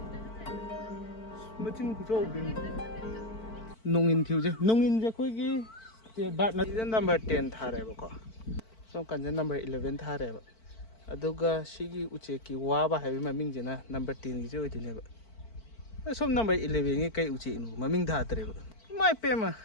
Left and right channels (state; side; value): late; right; 4.5 ms